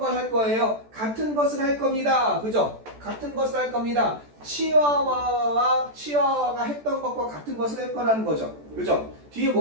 할 거예요? 같은 것을 할 겁니다. 그죠? 같은 것을 할 겁니다. 치와와가 했던 것과 같은 것을 할 거라는 거죠. 그죠? 뒤에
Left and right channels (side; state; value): left; late; 14 ms